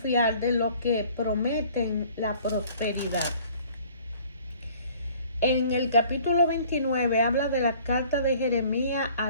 de lo que prometen la prosperidad. En el capítulo 29 habla de la carta de Jeremías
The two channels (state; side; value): inverted; both; correlation -0.53